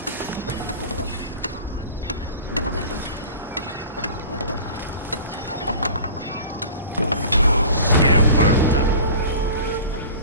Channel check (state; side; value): inverted; both; correlation -0.40